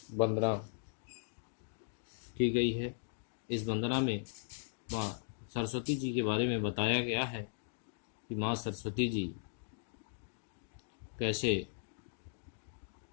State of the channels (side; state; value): right; silent; digital silence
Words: वंदना की गई है। इस वंदना में माँ सरस्वती जी के बारे में बताया गया है कि माँ सरस्वती जी कैसे